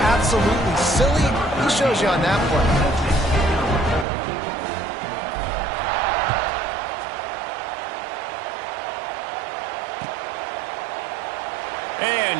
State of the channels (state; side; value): drops out; left; at 4.0 s